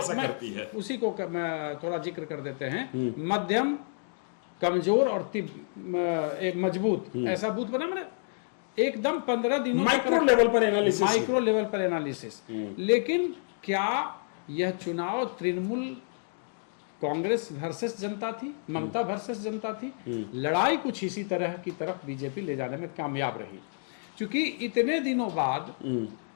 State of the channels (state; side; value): silent; right; digital silence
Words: करती है। उसी को मैं थोड़ा जिक्र कर देते हैं। मध्यम, कमजोर और एक मजबूत, ऐसा बूथ बना, मैंने एकदम 15 दिनों माइक्रो लेवल पर एनालिसिस। लेकिन क्या यह चुनाव तृणमूल कांग्रेस वर्सेस जनता थी, ममता वर्सेस जनता थी? लड़ाई कुछ इसी तरह की तरफ बीजेपी ले जाने में कामयाब रही, क्योंकि इतने दिनों बाद